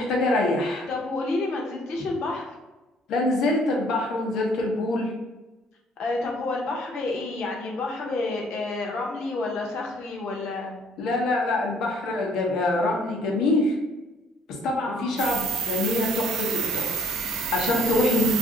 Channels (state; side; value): normal; both; correlation 0.60